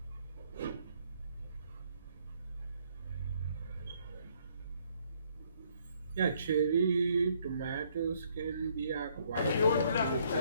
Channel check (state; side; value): inverted; both; correlation -0.67